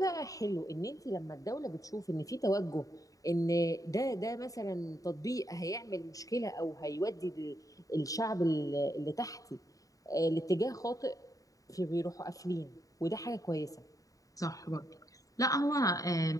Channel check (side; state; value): right; late; 0.16 ms